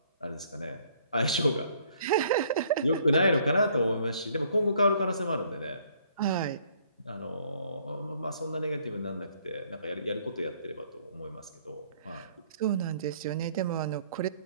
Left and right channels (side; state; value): both; inverted; correlation -0.62